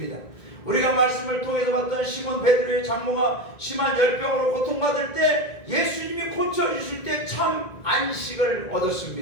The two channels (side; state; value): right; late; 1.9 ms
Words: 우리가 말씀을 통해서 봤던 시몬 베드로의 장모가 심한 열병으로 고통받을 때 예수님이 고쳐주실 때 참 안식을